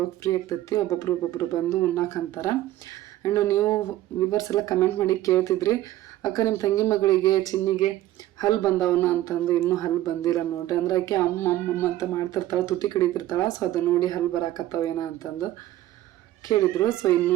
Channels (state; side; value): quieter; left; 14.5 dB